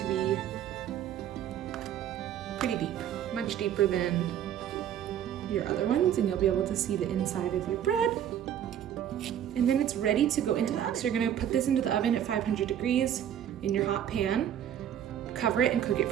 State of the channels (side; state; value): left; quieter; 10.1 dB